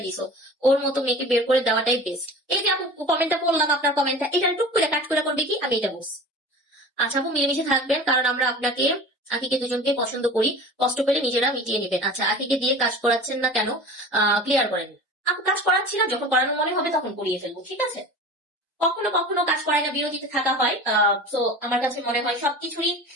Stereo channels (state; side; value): normal; both; correlation 0.37